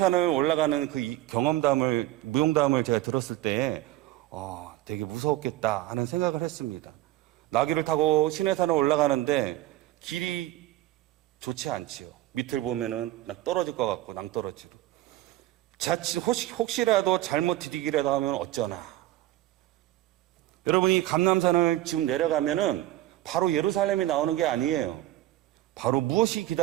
올라가는 그 경험담을, 무용담을 제가 들었을 때 되게 무서웠겠다 하는 생각을 했습니다. 나귀를 타고 시내산을 올라가는데 길이 좋지 않지요. 밑을 보면은 떨어질 것 같고 낭떠러지로. 자칫 혹시라도 잘못 디디기라도 하면 어쩌나. 여러분이 감람산을 지금 내려가면은 바로 예루살렘이 나오는 게 아니에요. 바로 무엇이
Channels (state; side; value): quieter; left; 15.4 dB